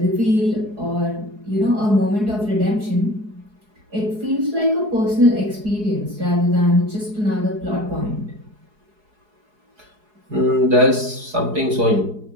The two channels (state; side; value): late; left; 4.7 ms